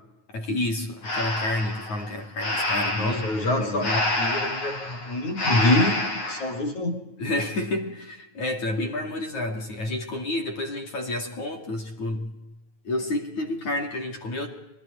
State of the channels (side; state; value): right; late; 9.3 ms